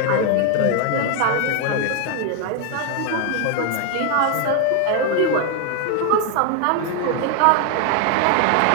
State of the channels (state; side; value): different; both; correlation 0.00